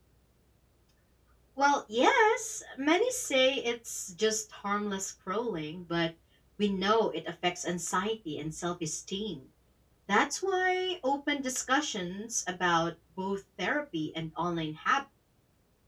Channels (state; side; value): identical; both; correlation 1.00